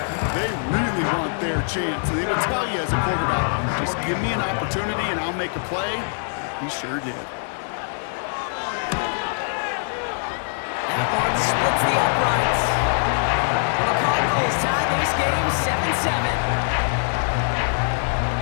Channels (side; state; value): right; silent; digital silence